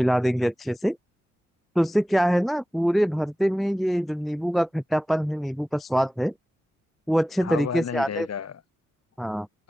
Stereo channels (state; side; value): normal; both; correlation 0.96